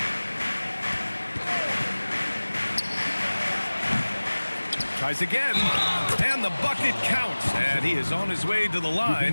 Tries again, and the bucket counts. And he is on his way to the line.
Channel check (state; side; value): inverted; both; correlation -1.00